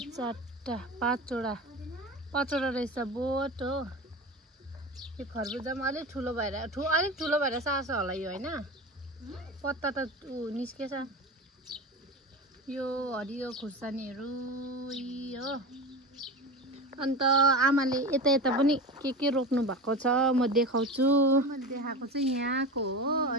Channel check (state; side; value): normal; both; correlation 0.27